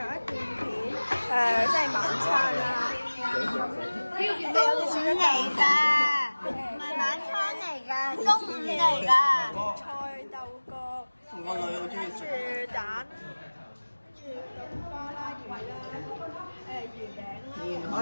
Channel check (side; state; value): both; inverted; correlation -1.00